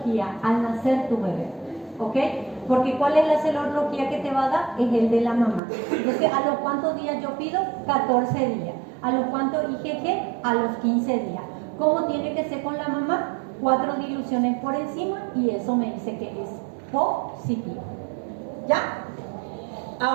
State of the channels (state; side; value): drops out; left; at 5.6 s